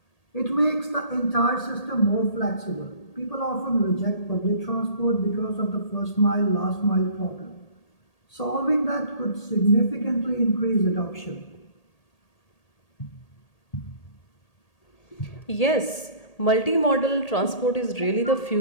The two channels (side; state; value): right; late; 1.8 ms